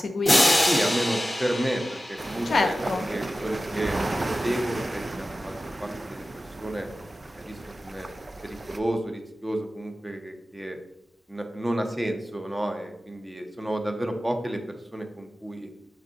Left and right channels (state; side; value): normal; both; correlation 0.94